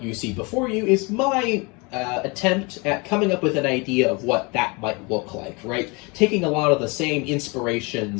you see before you is my attempt at coming up with an idea of what that might look like, right? Taking a lot of the same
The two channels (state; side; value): quieter; right; 28.3 dB